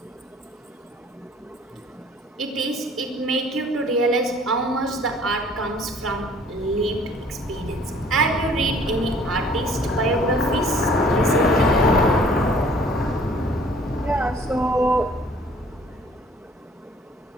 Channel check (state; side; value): normal; both; correlation 0.55